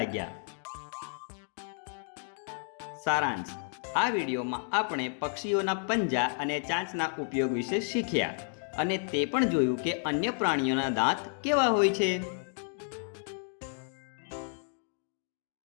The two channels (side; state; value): right; silent; 57 dB below the other